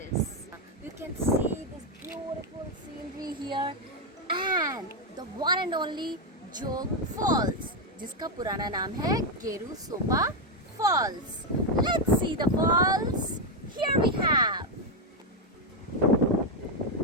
You can see this beautiful scenery here and the one and only Jog Falls, जिसका पुराना नाम है गेरू सोपा Falls. Let's see the falls. Here we have.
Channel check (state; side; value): normal; both; correlation 0.04